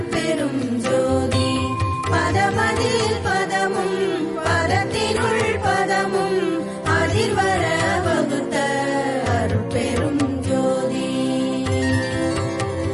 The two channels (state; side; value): identical; both; correlation 1.00